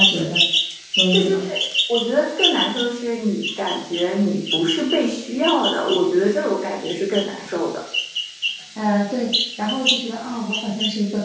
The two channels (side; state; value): both; identical; correlation 1.00